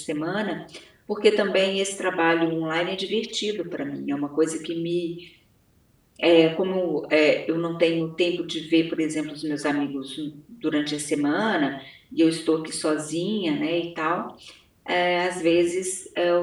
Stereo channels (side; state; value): both; identical; correlation 1.00